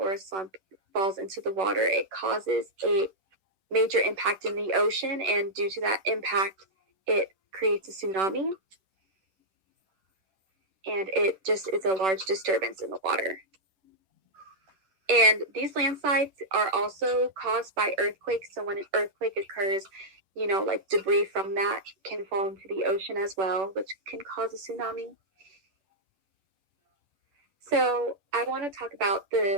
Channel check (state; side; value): late; left; 10 ms